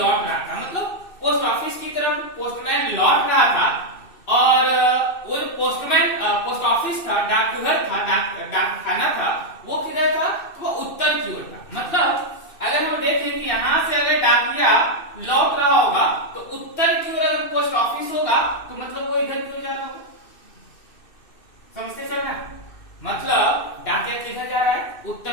रहा था, मतलब पोस्ट ऑफिस की तरफ पोस्टमैन लौट रहा था और वो पोस्टमैन पोस्ट ऑफिस था, डाकघर था, डाक खाना था, वो किधर था? तो वो उत्तर की ओर था। मतलब अगर हम देखें कि यहाँ से अगर डाकिया लौट रहा होगा तो उत्तर की ओर अगर पोस्ट ऑफिस होगा तो मतलब वो इधर की ओर जा रहा होगा। समझते चल रहा है? मतलब डाकिया किधर जा रहा है? उत्तर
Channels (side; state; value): right; late; 2.6 ms